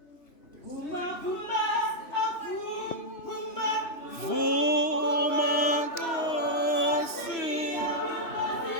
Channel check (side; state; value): right; late; 2.9 ms